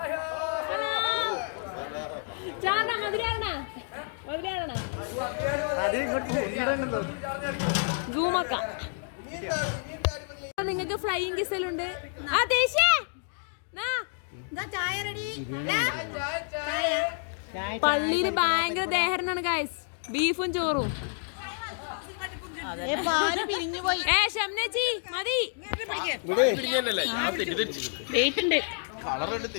നിങ്ങൾക്ക് ഫ്ലൈയിങ് കിസലുണ്ട്. പള്ളിയില് ഭയങ്കര ദേഹരനാണ് ഗൈസ്. ബീഫും ചോറും.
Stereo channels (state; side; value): silent; right; 59 dB below the other